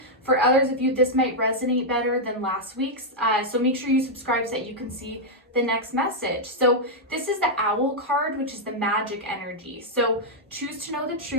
For others of you, this might resonate better than last week's. So make sure you subscribe so that you can see the next message. So this is the owl card, which is the magic energy. So choose to know the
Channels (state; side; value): normal; both; correlation -0.03